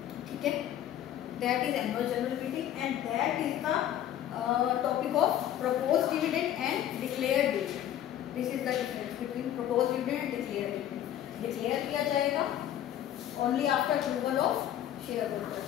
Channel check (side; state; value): right; quieter; 11.4 dB